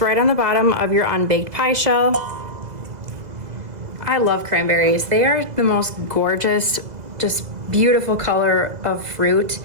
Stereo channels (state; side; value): late; left; 2.0 ms